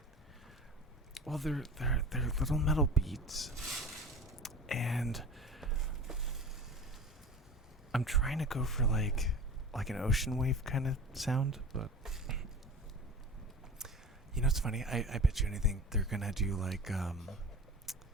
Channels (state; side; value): normal; both; correlation 0.35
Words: Well, they're little metal beads, and I'm trying to go for like an ocean wave kind of sound, but you know it's funny. I bet you anything they're gonna do like